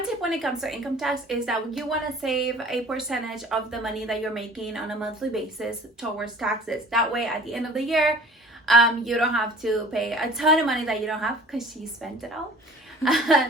tip when it comes to income tax is that you want to save a percentage of the money that you're making on a monthly basis towards taxes. That way, at the end of the year, you don't have to pay a ton of money that you don't have because you spent it all.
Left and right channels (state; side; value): normal; both; correlation 0.47